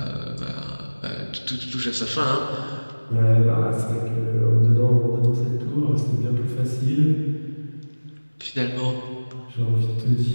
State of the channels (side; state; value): both; inverted; correlation -1.00